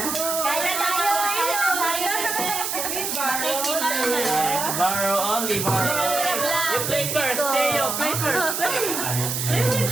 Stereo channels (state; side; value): noise; right; hiss, 2 dB below the sound